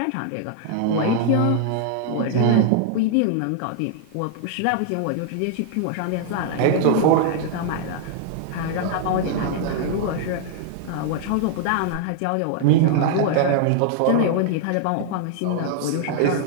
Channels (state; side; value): different; both; correlation 0.00